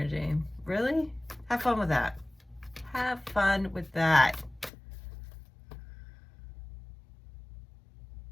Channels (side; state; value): right; drops out; at 4.7 s